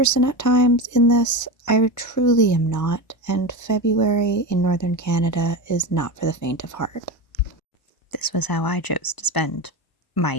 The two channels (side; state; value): right; late; 1.0 ms